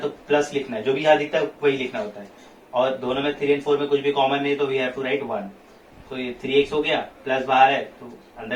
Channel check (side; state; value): both; identical; correlation 1.00